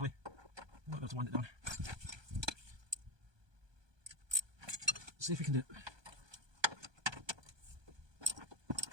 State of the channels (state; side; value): late; left; 1.2 ms